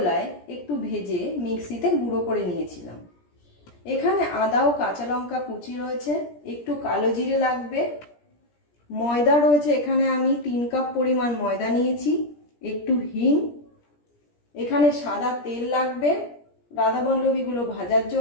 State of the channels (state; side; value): late; right; 17 ms